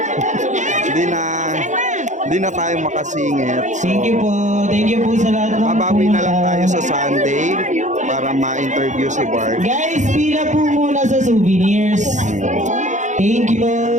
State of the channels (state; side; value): late; left; 0.35 ms